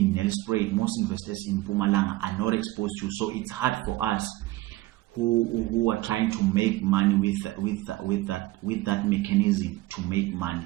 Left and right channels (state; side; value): quieter; left; 18.4 dB